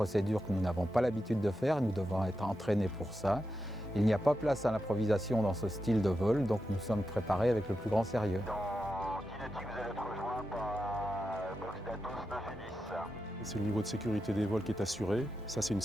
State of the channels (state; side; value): normal; both; correlation 0.88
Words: que nous n'avons pas l'habitude de faire, nous devons être entraînés pour ça. Il n'y a pas place à l'improvisation dans ce style de vol, donc nous sommes préparés avec le plus grand sérieux. Dans 10 nautiques, vous allez être rejoint par box d'Atos 9 et 10. C'est le niveau de sécurité des vols qui est assuré, ça c'est une